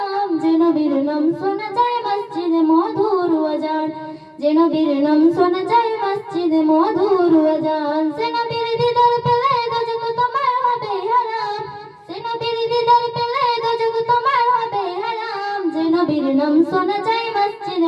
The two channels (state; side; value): identical; both; correlation 1.00